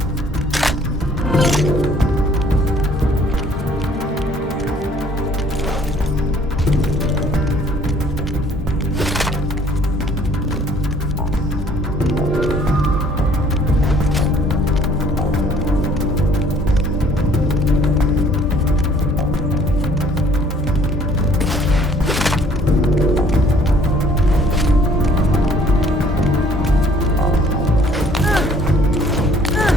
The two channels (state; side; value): normal; both; correlation 0.58